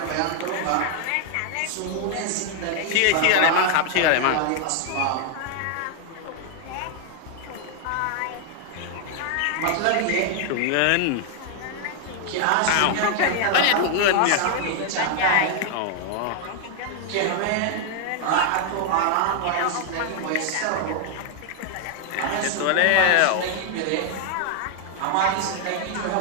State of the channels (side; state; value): both; different; correlation 0.00